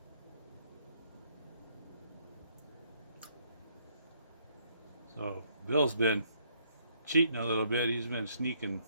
So Bill's been cheating a little bit. He's been sneaking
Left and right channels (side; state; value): both; inverted; correlation -0.69